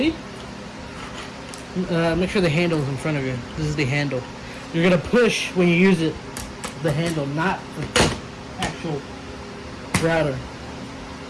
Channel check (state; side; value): identical; both; correlation 1.00